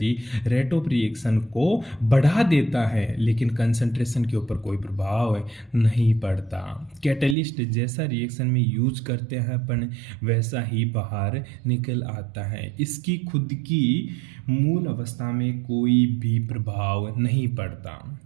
रेट ऑफ रिएक्शन को बढ़ा देता है लेकिन कंसंट्रेशन के ऊपर कोई प्रभाव नहीं पड़ता। कैटेलिस्ट जैसा रिएक्शन में यूज करते हैं अपन वैसा ही बाहर निकल आता है, इसकी खुद की मूल अवस्था में कोई भी प्रभाव नहीं पड़ता।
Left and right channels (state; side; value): drops out; left; at 7.4 s